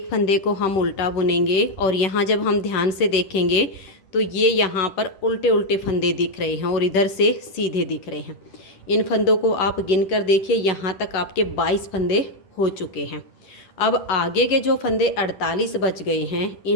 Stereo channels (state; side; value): late; right; 10 ms